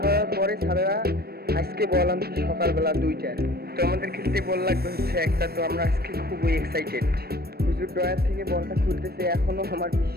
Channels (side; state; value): left; late; 0.46 ms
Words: করার পরে স্যারেরা আজকে বল আনছে সকালবেলা 2টায়। তো আমাদের খেলতে বল লাগবে হচ্ছে একটা। তো আমরা আজকে খুবই এক্সাইটেড। হুজুর ড্রয়ার থেকে বলটা খুলতেছে, এখনও আমার